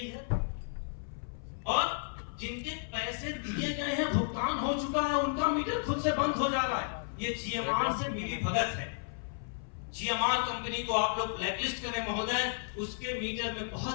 है? और जिनके पैसे दिए गए हैं, भुगतान हो चुका है, उनका मीटर खुद से बंद हो जा रहा है। ये जीएमआर से मिली भगत है। जीएमआर कंपनी को आप लोग ब्लैकलिस्ट करें महोदय, उसके मीटर में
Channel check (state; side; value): silent; right; 56 dB below the other